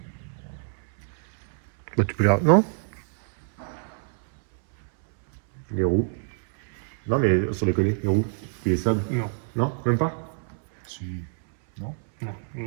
Bah, tu peux les. Non. Les roues. Non, mais sur les collets, les roues. Puis les sables. Non. Non, même pas. Si. Non. On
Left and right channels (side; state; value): left; silent; 61 dB below the other